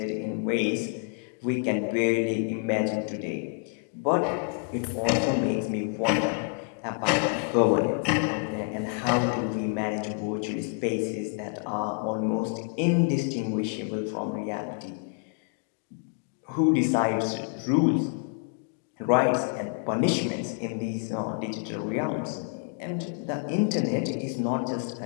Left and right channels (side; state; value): right; quieter; 37.8 dB